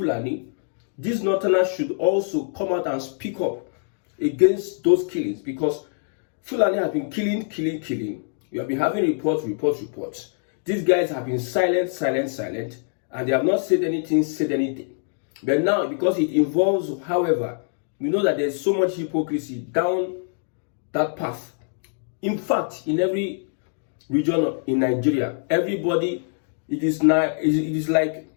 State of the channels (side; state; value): right; silent; 62 dB below the other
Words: these Northerners should also come out and speak up against those killings, because Fulani has been killing. We have been having reports. These guys have been silent, and they have not said anything. But now, because it involves, however, we know that there's so much hypocrisy down that path. In fact, in every region in Nigeria, everybody, it is like